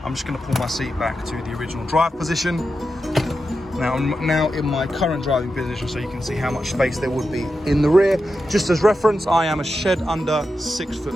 I'm just going to pull my seat back to the original drive position. Now, I'm now in my current driving position, so you can see how much space there would be in the rear. Just as reference, I am a shed under 6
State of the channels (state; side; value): normal; both; correlation 0.89